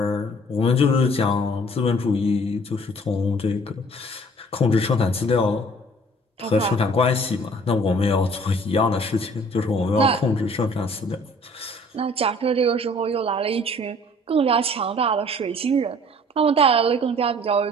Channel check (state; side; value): normal; both; correlation 0.53